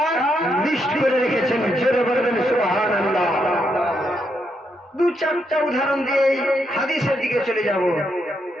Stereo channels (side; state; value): both; normal; correlation 0.79